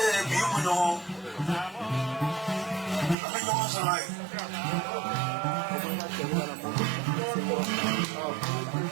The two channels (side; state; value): left; drops out; at 3.2 s